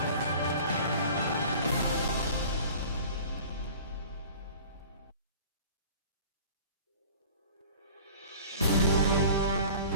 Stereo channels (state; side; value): inverted; both; correlation -0.43